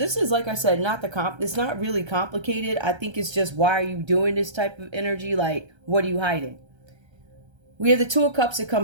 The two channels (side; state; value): left; late; 1.3 ms